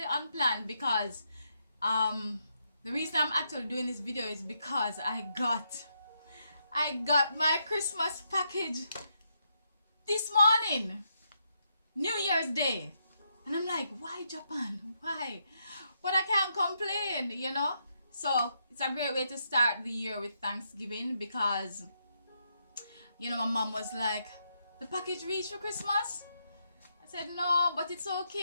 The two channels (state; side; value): inverted; both; correlation -0.79